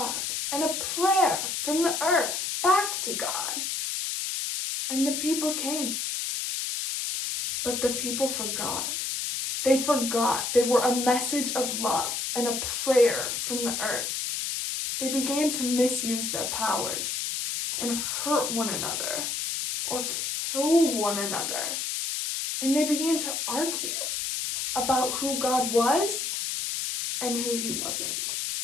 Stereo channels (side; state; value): left; noise; hiss, 2 dB below the sound